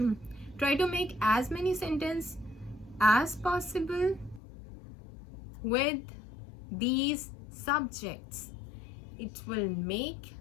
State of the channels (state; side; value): drops out; right; at 4.4 s